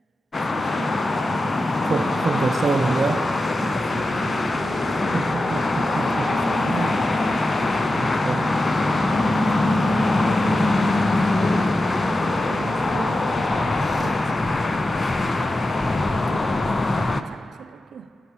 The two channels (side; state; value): both; normal; correlation 0.91